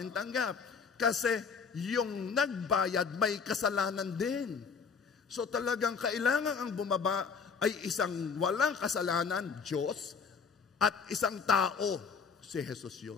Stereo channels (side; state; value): right; quieter; 5.7 dB